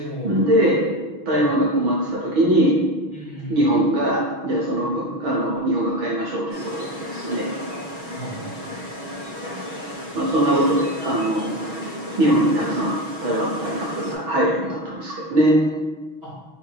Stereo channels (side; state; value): left; late; 6.2 ms